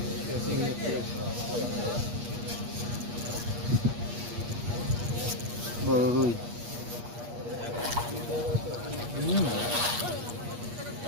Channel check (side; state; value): left; late; 8.4 ms